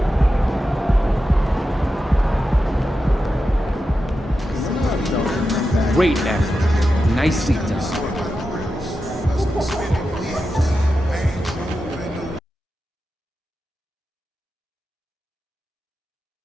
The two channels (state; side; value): normal; both; correlation 0.90